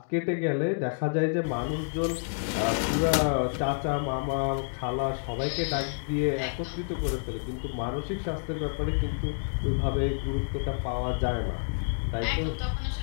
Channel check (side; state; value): right; silent; digital silence